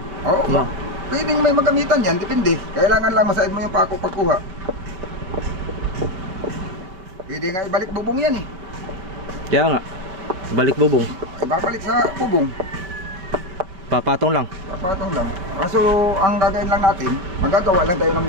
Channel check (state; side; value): late; left; 5.3 ms